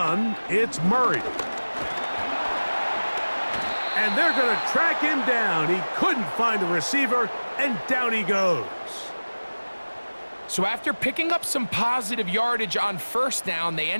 it's Murray. And they're going to track him down. He couldn't find a receiver, and down he goes. So after picking up some positive yardage on first down, they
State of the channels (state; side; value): inverted; both; correlation -1.00